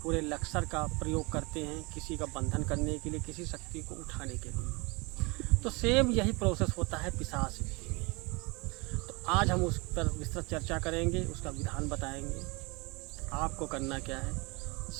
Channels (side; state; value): left; quieter; 27.3 dB